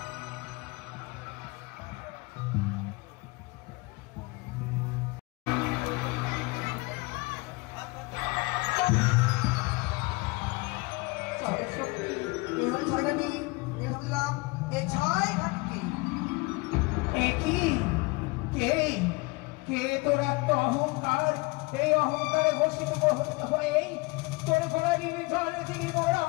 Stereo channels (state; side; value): quieter; right; 25.3 dB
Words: অহংকার এই অহংকারে ঘোষিত হয়ে তোর ঘোড়ারি জল দিলি মোর